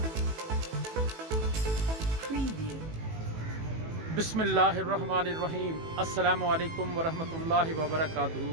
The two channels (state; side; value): late; left; 18 ms